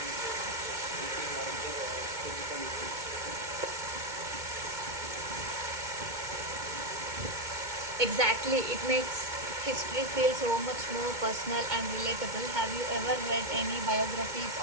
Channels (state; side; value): late; left; 2.2 ms